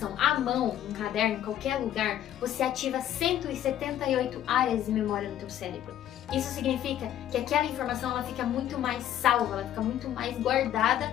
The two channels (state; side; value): quieter; right; 11.4 dB